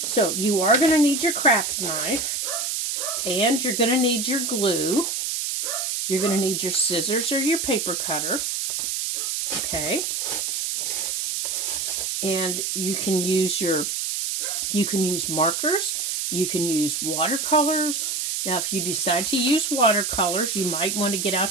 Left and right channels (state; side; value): noise; right; hiss, 1 dB below the sound